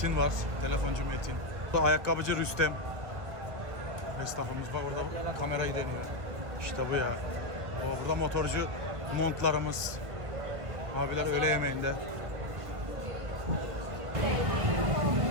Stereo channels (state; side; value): late; left; 1.6 ms